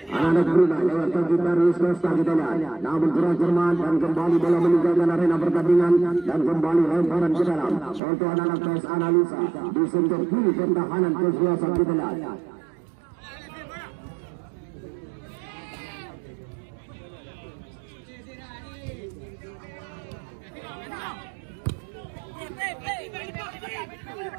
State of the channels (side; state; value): left; drops out; at 8.0 s